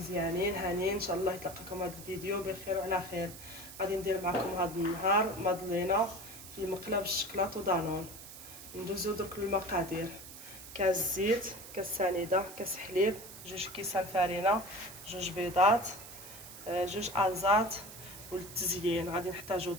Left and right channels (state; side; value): noise; right; hiss, 14 dB below the sound